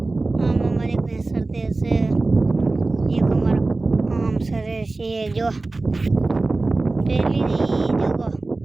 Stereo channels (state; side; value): quieter; left; 3.3 dB